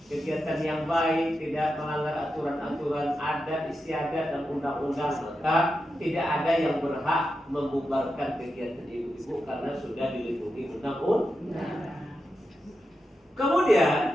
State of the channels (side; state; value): both; normal; correlation 0.89